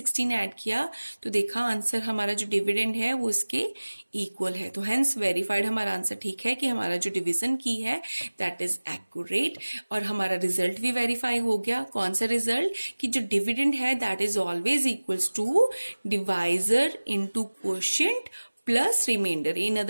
ऐड किया तो देखा आंसर हमारा जो डिविडेंड है वो इसके इक्वल है। तो हेंस वेरीफाइड हमारा आंसर ठीक है कि हमारा जो डिवीजन की है दैट इज एक्यूरेट, और हमारा रिजल्ट भी वेरीफाई हो गया। कौन सा रिजल्ट? कि जो डिविडेंड है that is always equals to divisor into quotient plus reminder. In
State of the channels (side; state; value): both; inverted; correlation -1.00